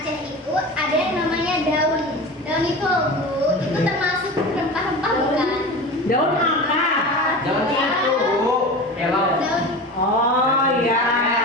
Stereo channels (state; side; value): normal; both; correlation 0.31